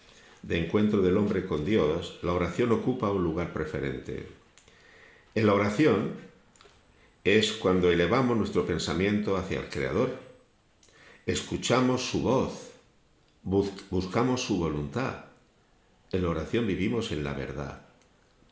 de encuentro del hombre con Dios, la oración ocupa un lugar preferente. En la oración es cuando elevamos nuestro pensamiento hacia el Creador, escuchamos su voz, buscamos su voluntad. En la oración vivimos en la verdad.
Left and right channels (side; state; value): both; identical; correlation 1.00